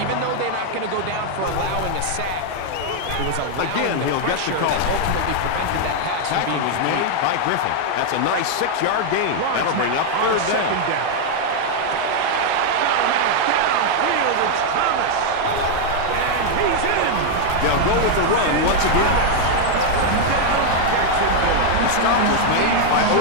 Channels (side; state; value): both; different; correlation 0.00